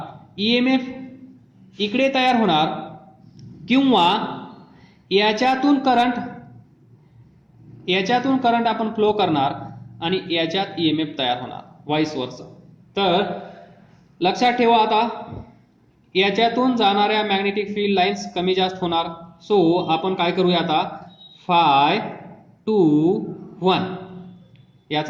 EMF इकडे तयार होणार, किंवा याच्यातून करंट आपण फ्लो करणार आणि याच्यात EMF तयार होणार, व्हाईस वर्सा. तर लक्षात ठेवा, आता याच्यातून जाणाऱ्या मॅग्नेटिक फील्ड लाईन्स कमी जास्त होणार. सो आपण काय करूया आता, Φ2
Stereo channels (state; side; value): identical; both; correlation 1.00